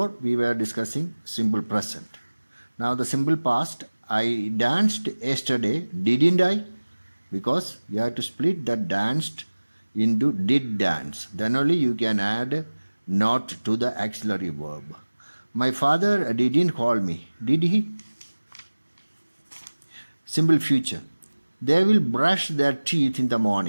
we were discussing simple present. Now the simple past, I danced yesterday, didn't I? Because you have to split that danced into did dance. Then only you can add not to the auxiliary verb. My father didn't call me. Did he? Simple future. They will brush their teeth in the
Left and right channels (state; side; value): inverted; both; correlation -1.00